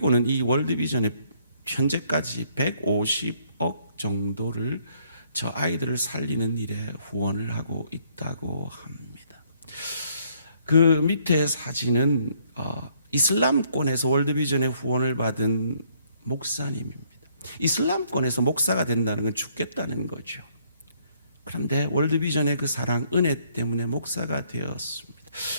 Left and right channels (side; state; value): both; inverted; correlation -0.67